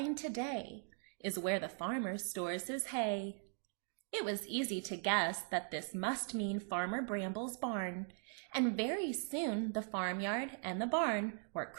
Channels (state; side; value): silent; left; 51 dB below the other